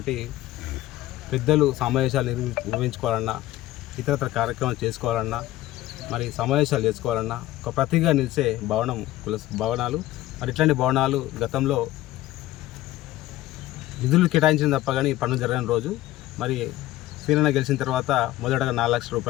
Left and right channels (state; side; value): quieter; right; 15.7 dB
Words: పెద్దలు సమావేశాలు నిర్వహించుకోవాలన్నా, ఇతరత్ర కార్యక్రమాలు చేసుకోవాలన్నా, మరి సమావేశాలు చేసుకోవాలన్నా ఒక ప్రతిగా నిలిచే భవనం కుల భవనాలు. మరి ఇట్లాంటి భవనాలు గతంలో నిధులు కేటాయించిన తప్ప కానీ పనులు జరగని రోజు. మరి శ్రీరణ గెలిచిన తర్వాత మొదటగా 4 లక్షల